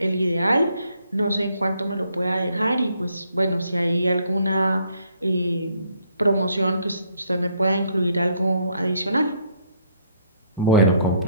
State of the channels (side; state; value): both; inverted; correlation -0.68